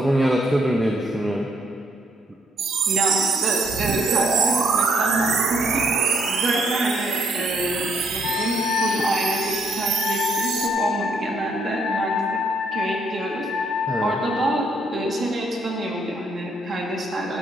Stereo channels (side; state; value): both; normal; correlation 0.70